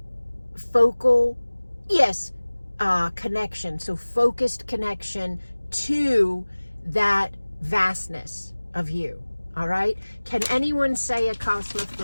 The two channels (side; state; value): both; inverted; correlation -1.00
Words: focal, connection. So focused connection to that vastness of you. All right. Can anyone say Acasma